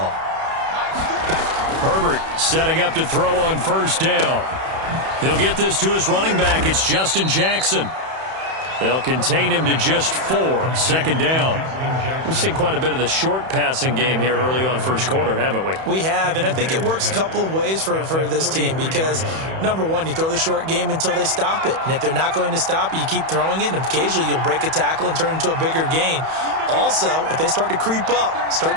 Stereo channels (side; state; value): left; late; 31 ms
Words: Herbert setting up to throw on first down. He'll get this to his running back. It's Justin Jackson. They'll contain him to just 4. Second down. We've seen quite a bit of the short passing game here early on first quarter, haven't we? We have, and I think it works a couple of ways for this team because, number one, you throw the short game until they stop it. And if they're not going to stop it, you keep throwing it, and occasionally you'll break a tackle and turn it into a bigger gain. Also, if they start to creep up, start